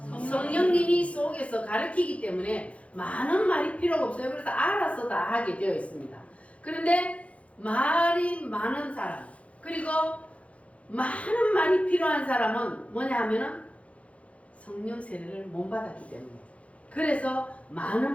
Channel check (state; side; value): late; right; 0.064 ms